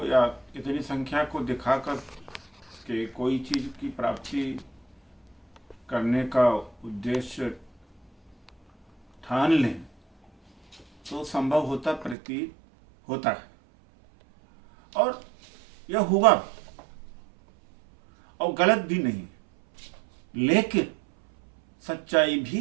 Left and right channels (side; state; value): left; drops out; at 12.2 s